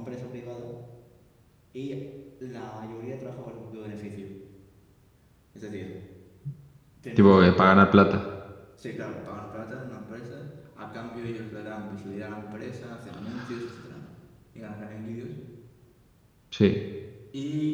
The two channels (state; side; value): identical; both; correlation 1.00